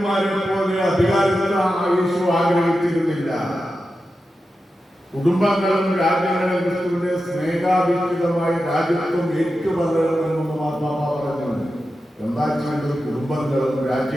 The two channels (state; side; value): normal; both; correlation 0.91